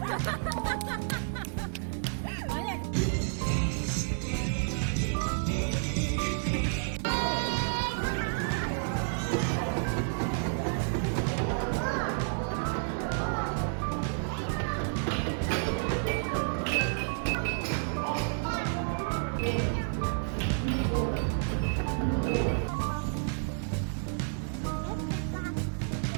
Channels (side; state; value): left; silent; digital silence